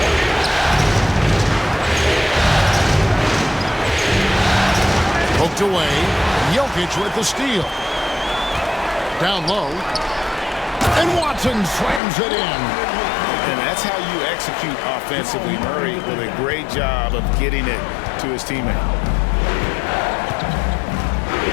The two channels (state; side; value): drops out; right; at 12.0 s